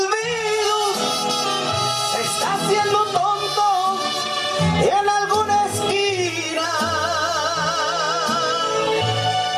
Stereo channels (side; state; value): both; identical; correlation 1.00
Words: se está haciendo tonto en alguna esquina.